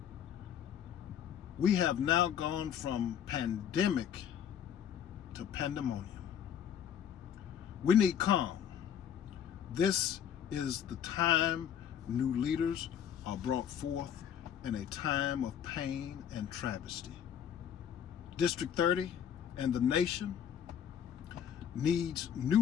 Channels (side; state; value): right; quieter; 8.9 dB